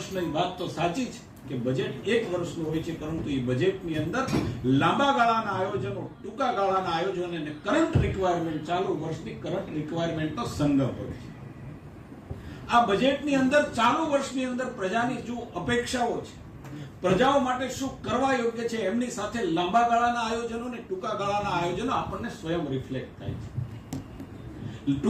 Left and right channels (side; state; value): both; identical; correlation 1.00